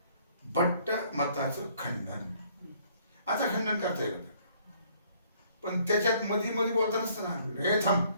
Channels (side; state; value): both; inverted; correlation -0.62